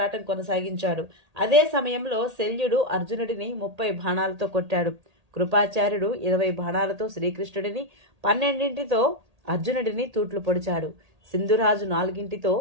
కొనసాగించాడు. అదే సమయంలో శల్యుడు అర్జునుడిని 30 బాణాలతో కొట్టాడు. కృపాచార్యుడు 20 బాణాలతో శ్రీకృష్ణుడిని, 12 అర్జునుడిని తూట్లు పొడిచాడు. సింధురాజు 4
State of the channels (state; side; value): late; left; 1.8 ms